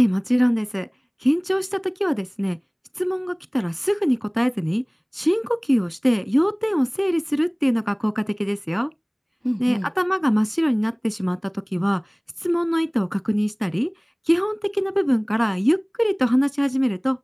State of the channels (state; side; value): identical; both; correlation 1.00